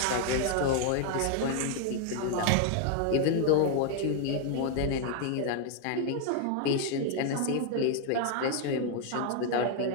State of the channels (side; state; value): both; different; correlation 0.00